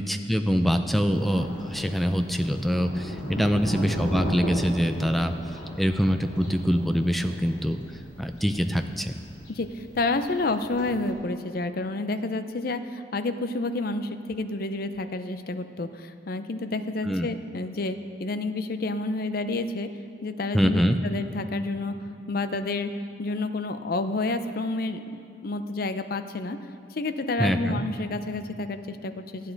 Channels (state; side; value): normal; both; correlation 0.73